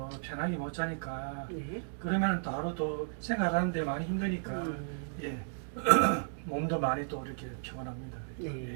편하게 못 자니까, 네. 그러면은 또 하루 또 생활하는데 많이 힘드니까, 예. 몸도 많이 또 이렇게 피곤합니다. 네. 예,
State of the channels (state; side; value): silent; left; digital silence